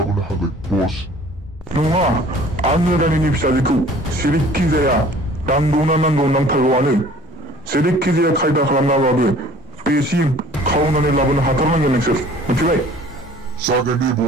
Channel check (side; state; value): both; normal; correlation 0.50